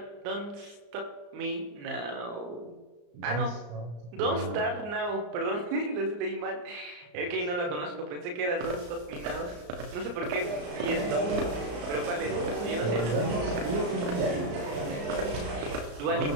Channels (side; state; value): left; late; 34 ms